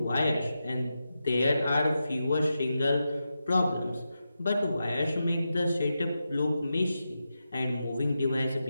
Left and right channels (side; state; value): both; inverted; correlation -0.89